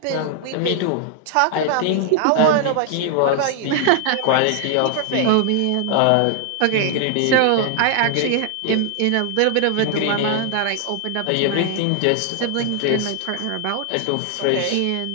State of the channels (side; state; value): both; different; correlation 0.00